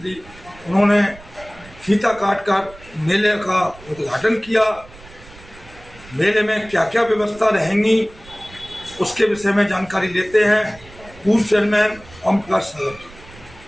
उन्होंने फीता काटकर मेले का उद्घाटन किया। मेले में क्या क्या व्यवस्था रहेंगी उसके विषय में जानकारी लेते हैं। पूर्व चेयरमैन ओम प्रकाश सागर,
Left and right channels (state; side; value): noise; right; rumble, 21 dB below the sound